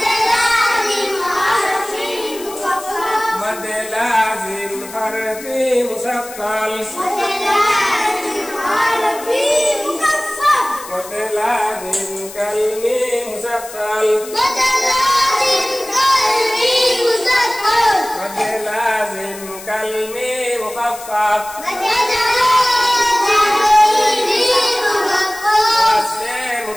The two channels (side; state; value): left; noise; hiss, 15 dB below the sound